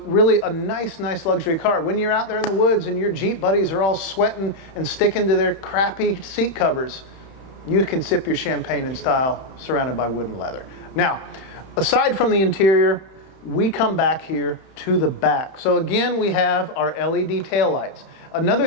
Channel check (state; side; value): late; right; 31 ms